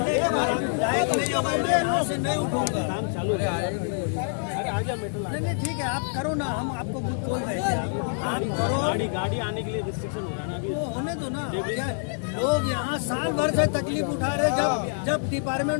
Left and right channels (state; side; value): silent; right; digital silence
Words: के बाद लायक नहीं होगा मैं यहाँ से नहीं उठूंगा। काम चालू है, नहीं ठीक है, आप करो ना, हम आपको कुछ बोल रहे हैं, आप करो। गाड़ी आने के लिए रिस्ट्रिक्शन हो रहा है ना अभी, वो होने दो ना। क्या लोग यहाँ साल भर से तकलीफ उठा रहे, जब